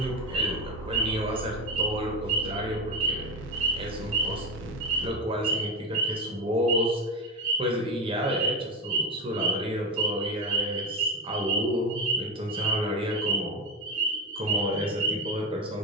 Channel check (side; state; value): both; normal; correlation 0.16